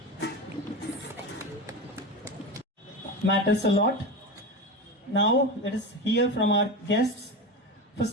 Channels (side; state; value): both; normal; correlation 0.22